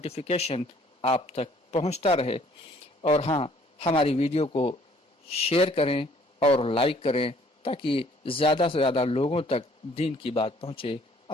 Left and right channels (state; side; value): normal; both; correlation 0.60